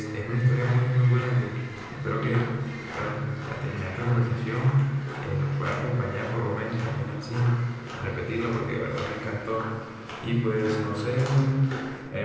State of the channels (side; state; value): both; identical; correlation 1.00